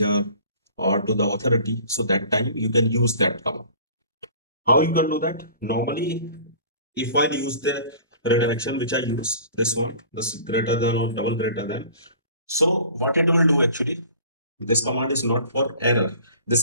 or to the authority, so that time you can use that command. How you can do that? Normally, if I use the redirection which I use, this one, this greater than or double greater than. So what it will do actually, this command is not for error,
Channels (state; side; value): inverted; both; correlation -0.46